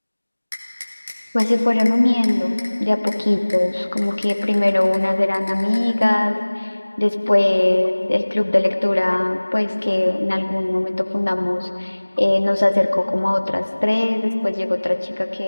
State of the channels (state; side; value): inverted; both; correlation -1.00